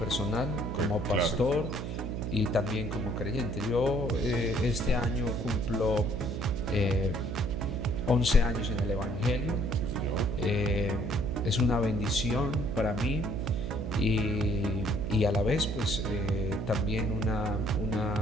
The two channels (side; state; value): right; noise; hum, 4 dB below the sound